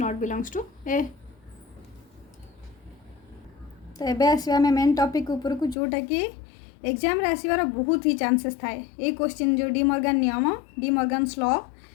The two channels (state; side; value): drops out; right; at 5.8 s